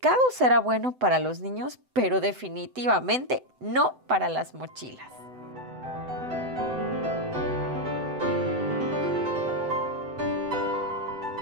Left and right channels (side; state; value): left; late; 7.9 ms